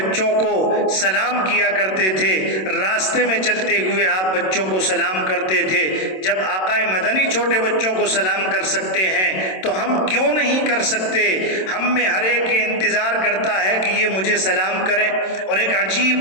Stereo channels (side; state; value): right; late; 27 ms